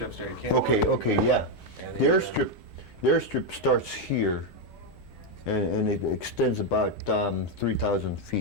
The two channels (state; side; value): normal; both; correlation 0.03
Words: there, you can't. Okay, yeah. And The airstrip starts here, and it extends about 3,000